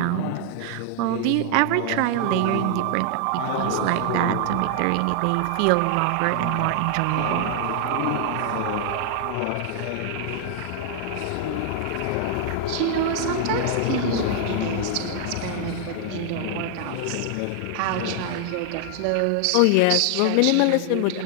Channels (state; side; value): different; both; correlation 0.00